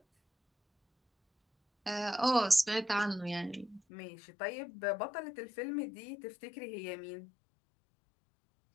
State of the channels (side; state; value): right; drops out; at 3.8 s